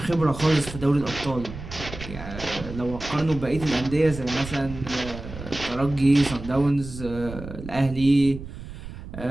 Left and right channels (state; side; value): noise; right; rumble, 12 dB below the sound